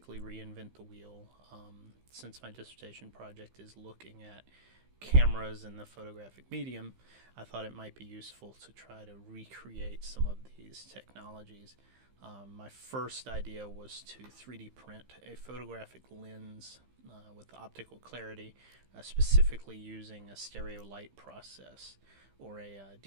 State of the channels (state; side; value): late; left; 15 ms